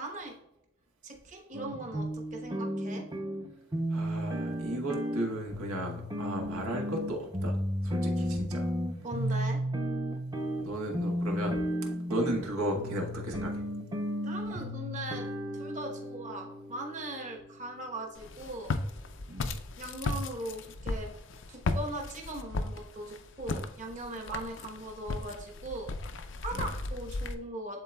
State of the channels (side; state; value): both; normal; correlation 0.64